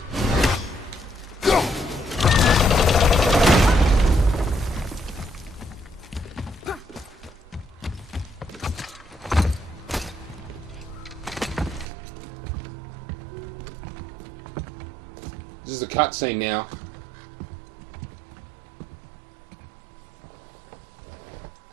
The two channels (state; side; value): drops out; left; at 11.9 s